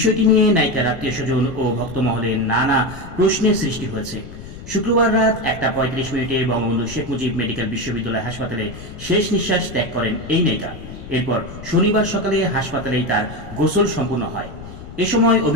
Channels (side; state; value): left; noise; rumble, 13 dB below the sound